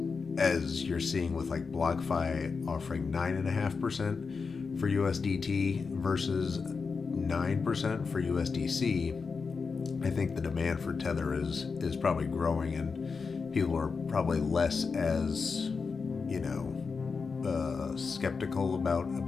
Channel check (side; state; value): right; quieter; 5.0 dB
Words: you're seeing with like BlockFi offering 9.5% for USDT versus 9% for USDC, I think the demand for Tether is probably growing, and people are probably less as skeptical